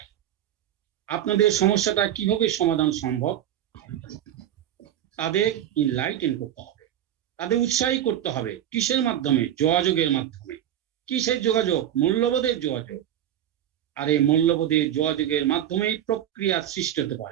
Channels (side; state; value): left; quieter; 11.2 dB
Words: আপনাদের সমস্যাটা কিভাবে সমাধান সম্ভব। তাদের ইনলাইটেন করতে হবে, তাদের উৎসাহী করতে হবে। কিসের মাধ্যমে? যোগাযোগের মাধ্যমে। কিসের যোগাযোগ? মূল্যবোধের যোগাযোগ। আর এই মূল্যবোধের যোগাযোগের মাধ্যমেই প্রক্রিয়া সৃষ্টি হতে